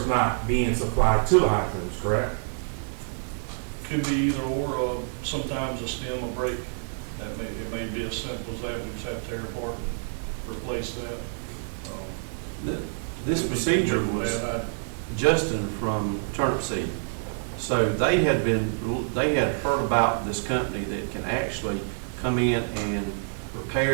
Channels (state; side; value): silent; left; digital silence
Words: not being supplied to the hydrants, correct? Could be either or, sometimes a stem will break. It may be as simple as that, we just have to tear apart and replace that. This procedure was Justin from Turnip Seed. So they had heard about this company that can actually come in and